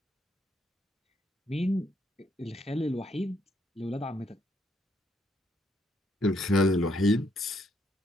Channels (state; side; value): normal; both; correlation 0.74